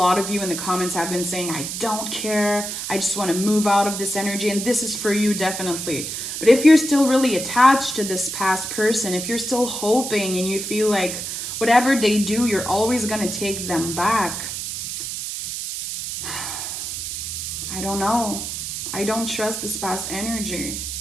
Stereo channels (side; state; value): right; noise; hiss, 5 dB below the sound